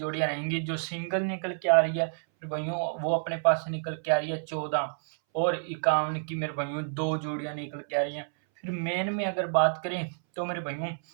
रहेंगी, जो सिंगल निकल के आ रही है मेरे भाइयों, वो अपने पास से निकल के आ रही है 14 और 51 की मेरे भाइयों, 2 जोड़ियां निकल के आ रही हैं। फिर मेन में अगर बात करें तो मेरे भाइयों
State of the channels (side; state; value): left; silent; 59 dB below the other